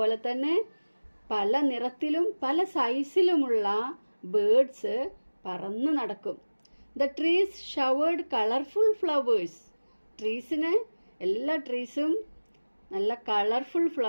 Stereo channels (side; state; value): both; inverted; correlation -1.00